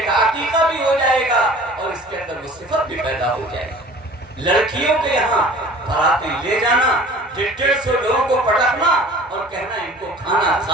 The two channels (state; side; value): normal; both; correlation 0.46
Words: کا عقیقہ بھی ہو جائے گا اور اس کے اندر وہ صفت بھی پیدا ہو جائے گی۔ لڑکیوں کے یہاں باراتیں لے جانا، 150 لوگوں کو پٹکنا اور کہنا ان کو کھانا